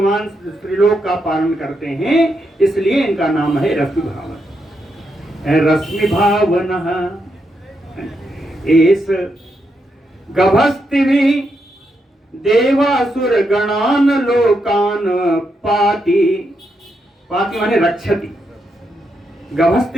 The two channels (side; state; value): both; normal; correlation 0.82